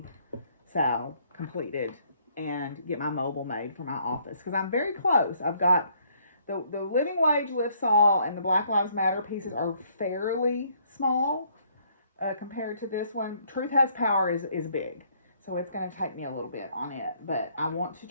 Sal completed and get my mobile made for my office. Because I'm very close. I've got the Living Wage Lifts All and the Black Lives Matter pieces are fairly small compared to this one. Truth Has Power is big. So it's going to take me a little bit on it. But I want to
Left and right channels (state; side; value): inverted; both; correlation -0.66